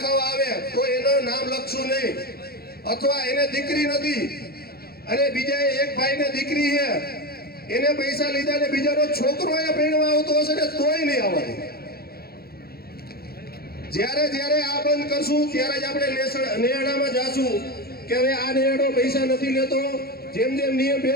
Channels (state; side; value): late; right; 0.45 ms